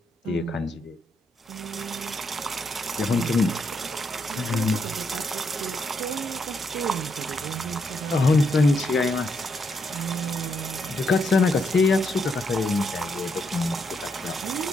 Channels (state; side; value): normal; both; correlation 0.78